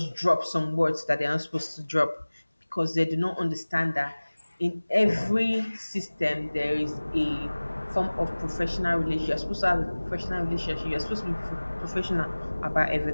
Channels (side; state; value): both; inverted; correlation -1.00